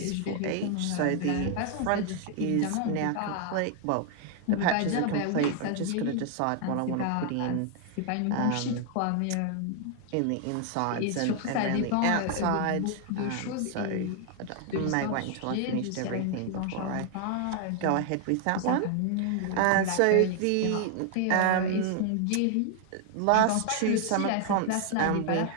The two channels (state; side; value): different; both; correlation 0.00